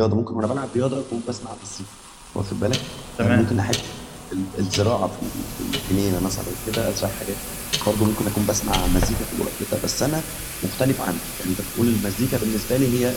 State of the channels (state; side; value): identical; both; correlation 1.00